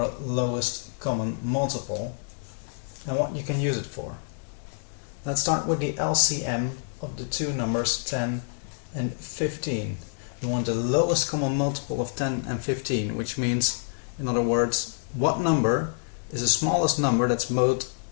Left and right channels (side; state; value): right; silent; 60 dB below the other